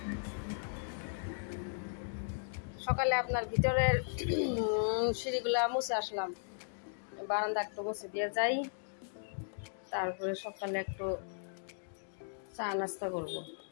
সকালে আপনার ভিতরের সিঁড়িগুলা মুছে আসলাম বারান্দা একটু মুছে দিয়ে যাই তারপরে সকালে একটু চা নাস্তা করব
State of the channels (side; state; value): right; silent; digital silence